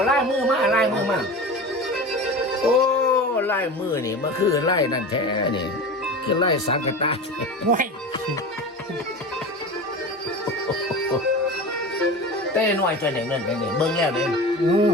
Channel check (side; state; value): both; normal; correlation 0.31